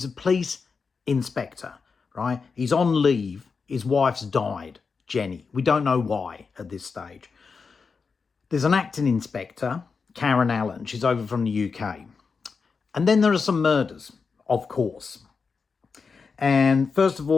a police inspector, right? He's on leave. His wife's died, Jenny. We don't know why at this stage. There's an acting inspector, Karen Allen. She's over from the UK. And then there are some murders, of course. And first of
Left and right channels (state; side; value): quieter; right; 5.1 dB